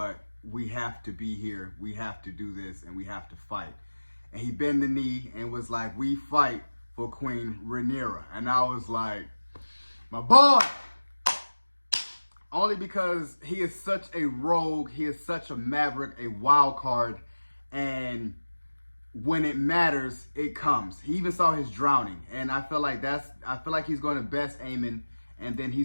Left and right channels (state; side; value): inverted; both; correlation -1.00